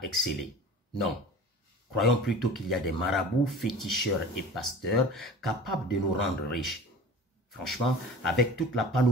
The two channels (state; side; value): normal; both; correlation 0.39